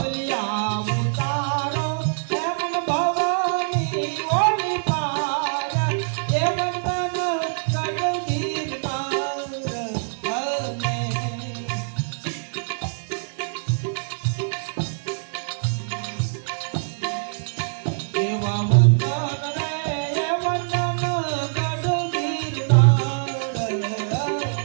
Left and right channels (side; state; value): left; silent; digital silence